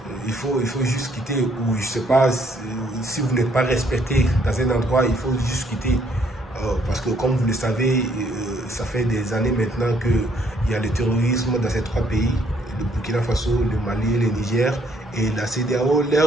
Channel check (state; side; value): normal; both; correlation 0.67